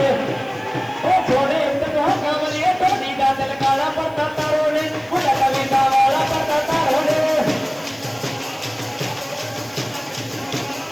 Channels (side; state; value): left; noise; hiss, 27 dB below the sound